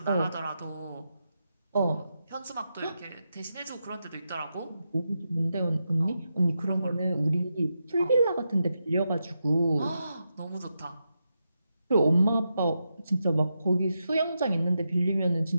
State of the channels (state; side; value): inverted; both; correlation -0.87